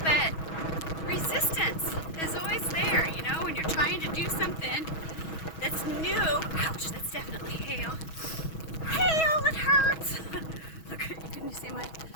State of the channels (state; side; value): late; right; 6.2 ms